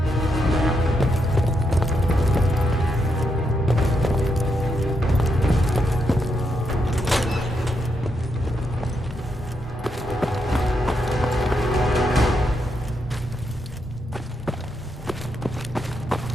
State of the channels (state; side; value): normal; both; correlation 0.81